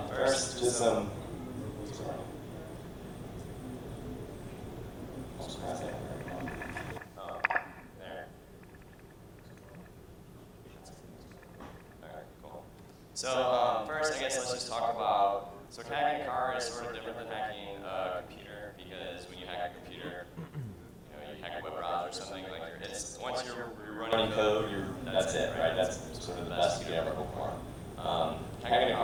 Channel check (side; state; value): both; identical; correlation 1.00